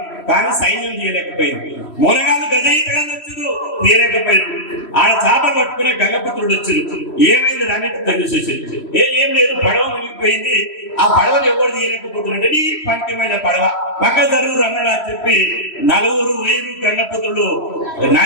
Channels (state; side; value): late; right; 3.1 ms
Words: కానీ సైన్యం తీయలేకపోయింది. మునగాళ్ళు గజయితగాళ్ళు వచ్చారు, తీయలేకపోయింది. ఆడ చేపలు పట్టుకునే గంగపుత్రుడు వచ్చారు. ఏమైంది రానిట్టు తెలిసేసింది. ఏం లేదు, పడవ మునిగిపోయింది. ఆ పడవను ఎవరు తీయలేకపోతున్నట్టే నీ పంకిమైన పడవ పక్క జరువురు అన్నాడు అని చెప్పి 4 గంగపుత్రులు